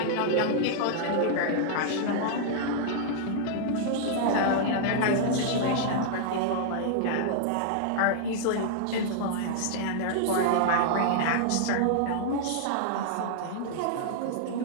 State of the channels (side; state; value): both; different; correlation -0.01